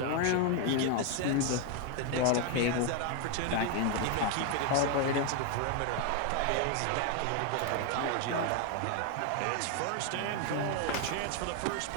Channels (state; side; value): different; both; correlation 0.01